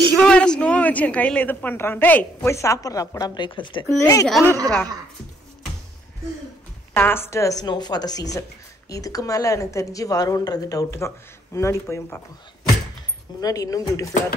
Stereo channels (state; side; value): normal; both; correlation 0.68